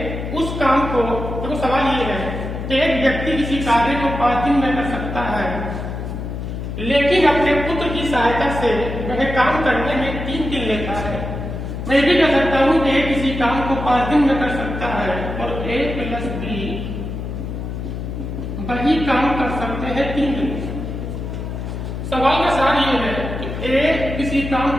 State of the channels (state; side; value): noise; left; hum, 6 dB below the sound